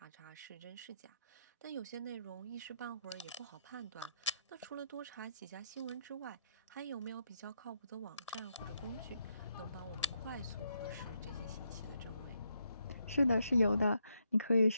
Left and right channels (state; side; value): inverted; both; correlation -0.80